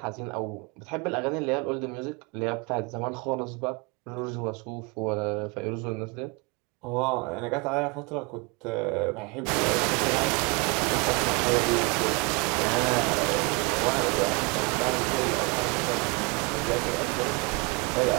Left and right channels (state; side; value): quieter; left; 29.7 dB